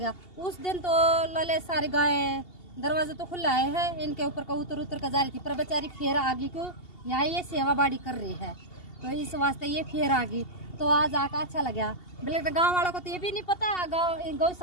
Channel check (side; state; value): right; late; 2.7 ms